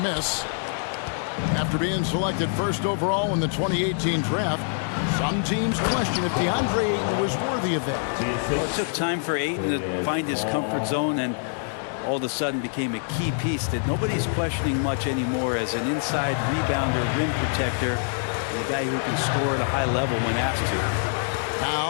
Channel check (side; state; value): right; silent; digital silence